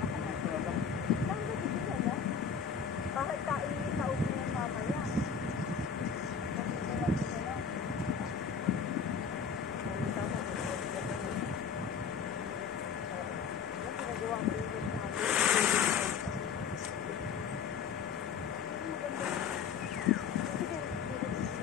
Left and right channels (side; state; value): right; quieter; 6.5 dB